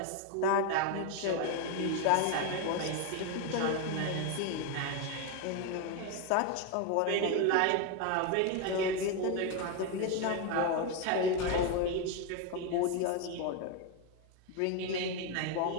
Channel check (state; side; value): different; both; correlation 0.02